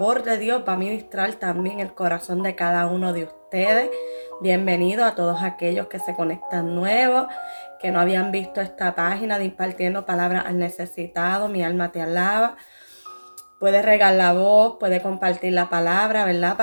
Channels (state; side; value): inverted; both; correlation -1.00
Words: de Dios va a ministrar también el corazón de cada uno de ustedes. Bienvenido a todos aquellos que se conectan nuevos, que no habían visto esta página de Impartiendo Palabras al Necesitado. Mi alma te alaba. Puede regar la voz, puede compartir la palabra, ¿verdad?